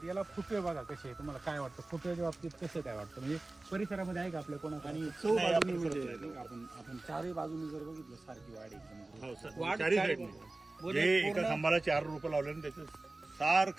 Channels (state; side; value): quieter; left; 3.0 dB